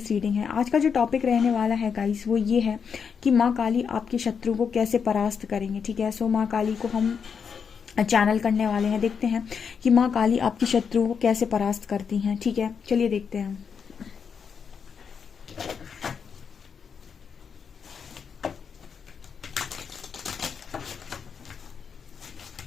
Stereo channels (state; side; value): quieter; right; 6.5 dB